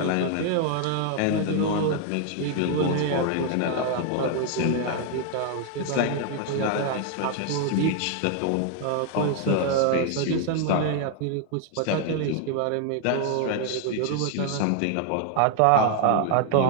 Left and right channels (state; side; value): different; both; correlation 0.00